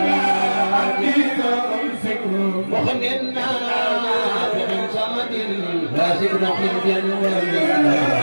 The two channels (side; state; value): both; inverted; correlation -1.00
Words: وخلنا بن زمد لا شكرهم بن ولدنا